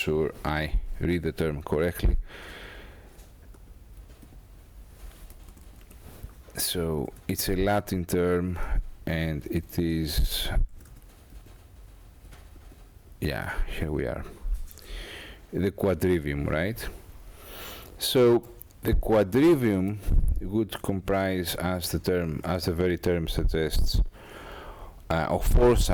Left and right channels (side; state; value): both; identical; correlation 1.00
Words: I read the term correctly. So it's a Latin term, and it is, yeah, here we are, the quadrivium, right? So the quadrivium would comprise, as the very term suggests, of 4